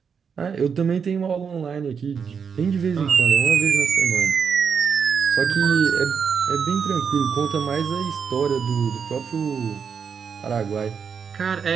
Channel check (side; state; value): left; quieter; 6.5 dB